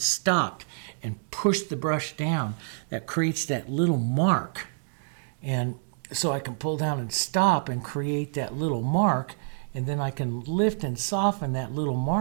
stopped and pushed the brush down. That creates that little mark. And so I can pull down and stop and create that little mark, and then I can lift and soften that little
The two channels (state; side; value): silent; left; digital silence